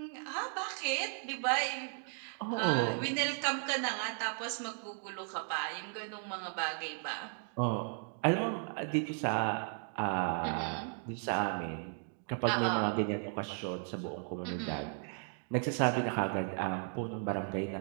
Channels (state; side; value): silent; left; 54 dB below the other